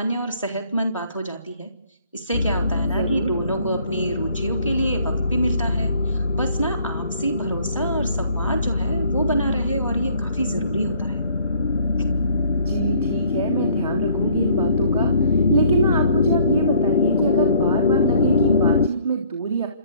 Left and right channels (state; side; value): inverted; both; correlation -0.60